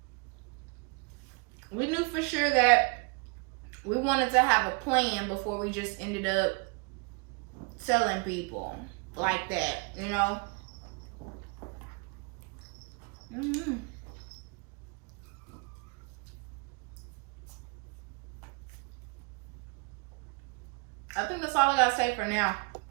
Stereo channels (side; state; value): left; quieter; 32.0 dB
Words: We knew for sure that we wanted to have a plan before we just ended up telling people like that, you know? Mm-hmm. I think that's all I gotta say for now.